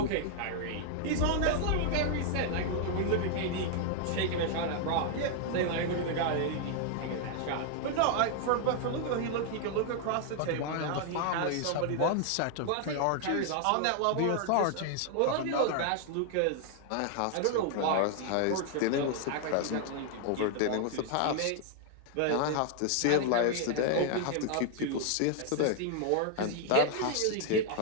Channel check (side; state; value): both; different; correlation 0.00